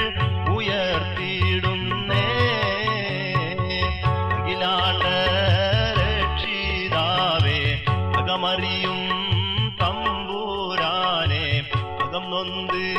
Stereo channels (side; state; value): both; identical; correlation 1.00